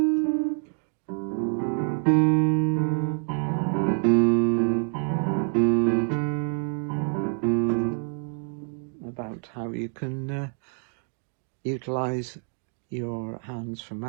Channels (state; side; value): quieter; left; 37.2 dB